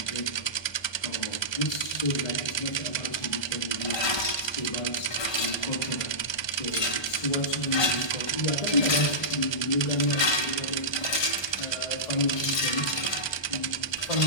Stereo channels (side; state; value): right; late; 1.2 ms